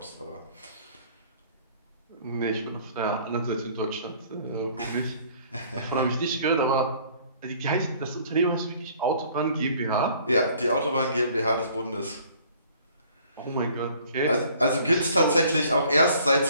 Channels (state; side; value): inverted; both; correlation -0.56